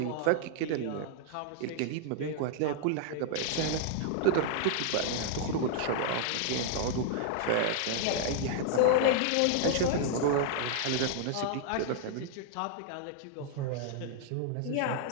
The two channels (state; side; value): different; both; correlation -0.01